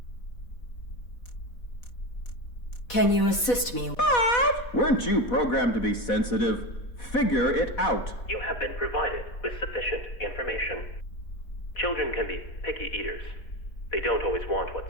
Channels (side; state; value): right; late; 4.1 ms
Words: Can you assist me? Weren't you programmed to be sensitive? Figure it out. You have been provided with sufficient information. Children can be picky eaters. They don't always want